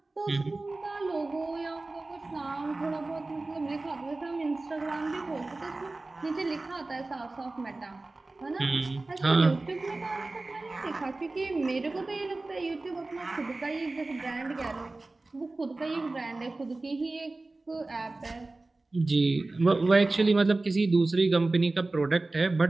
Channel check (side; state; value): left; quieter; 3.2 dB